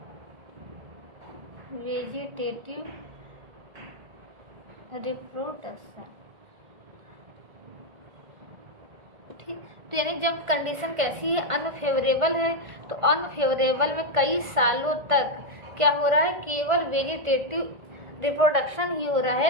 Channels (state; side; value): late; left; 1.5 ms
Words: vegetative reproduction. ठीक, तो यानी जब कंडीशन कैसी है, अनफेवरेबल है, तो अनफेवरेबल में कई सालों तक क्या हो रहा है, केवल वेजिटेटिव रिप्रोडक्शन ही हो रहा